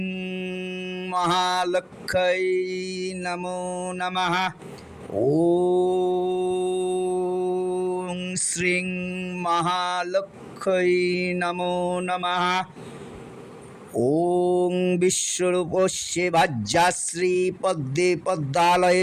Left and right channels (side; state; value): both; identical; correlation 1.00